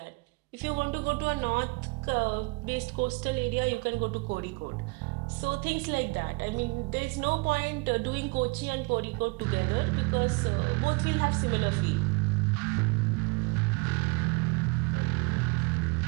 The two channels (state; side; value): quieter; left; 28.7 dB